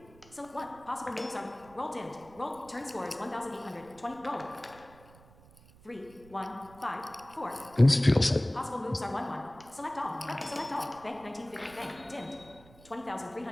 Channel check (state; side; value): noise; right; rumble, 23 dB below the sound